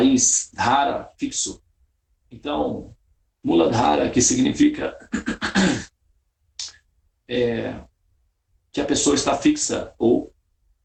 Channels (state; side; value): identical; both; correlation 1.00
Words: Dhara, fixo. Então, Muladhara, que significa que a pessoa está fixa, ou